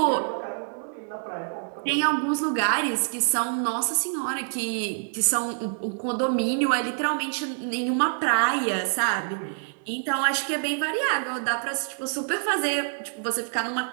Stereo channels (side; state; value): left; silent; 61 dB below the other